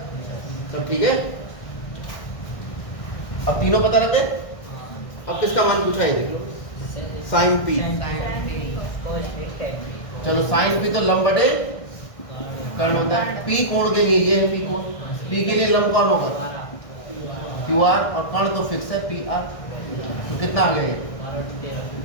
सब ठीक है। अब तीनों पता लग गए, अब किसका मान पूछा है, देखो साइन पी, चलो साइन पी तो लंब बटे कर्ण होता है, पी कोण के लिए ये है, पी कोण, पी के लिए लंब कौन होगा, क्यू आर, और कण तो फिक्स है पी आर। तो कितना आ गया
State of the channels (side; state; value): right; late; 1.6 ms